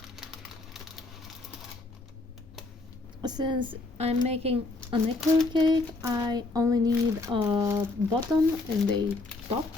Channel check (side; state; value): right; quieter; 3.3 dB